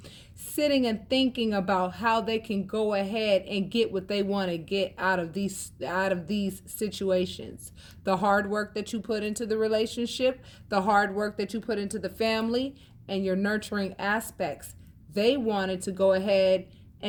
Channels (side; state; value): both; identical; correlation 1.00